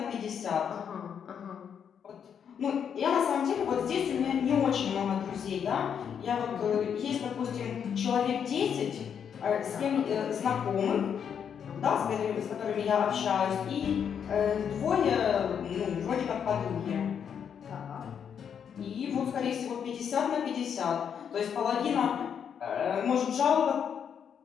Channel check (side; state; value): right; quieter; 7.8 dB